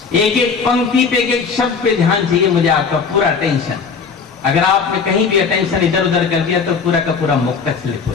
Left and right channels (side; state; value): right; quieter; 5.5 dB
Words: एक एक पंक्ति पे, एक एक शब्द पे ध्यान चाहिए मुझे, आपका पूरा अटेंशन। अगर आपने कहीं भी अटेंशन इधर उधर कर दिया तो पूरा का पूरा मुक्तक स्लिप हो